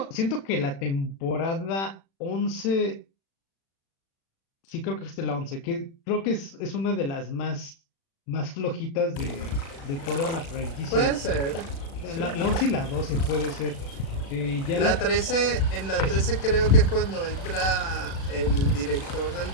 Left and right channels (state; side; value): late; right; 36 ms